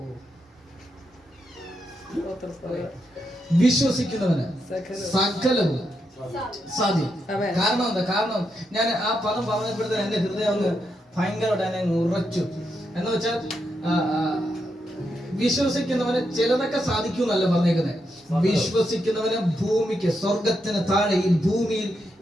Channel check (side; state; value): both; normal; correlation 0.83